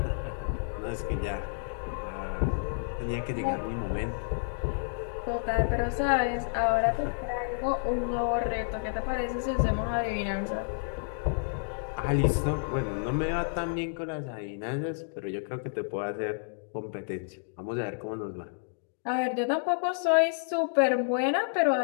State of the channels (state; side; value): silent; right; digital silence